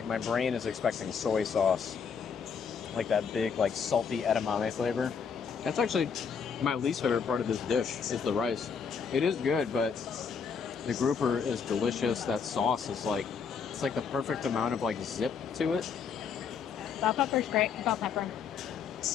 brain is expecting soy sauce. Like that big, like salty edamame flavor. That's actually my least favorite part of this dish is the rice. It is good, but The grouper is delicious. That sauce is like, it's like the perfect amount of like zip to it. Bell pepper's great. Bell pepper.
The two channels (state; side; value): quieter; right; 6.3 dB